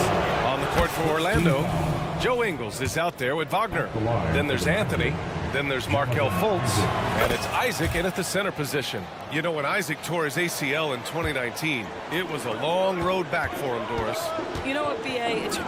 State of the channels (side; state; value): both; identical; correlation 1.00